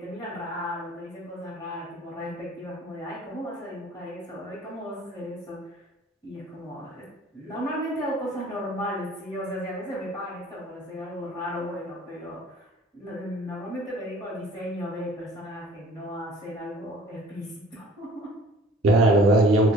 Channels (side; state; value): both; normal; correlation 0.50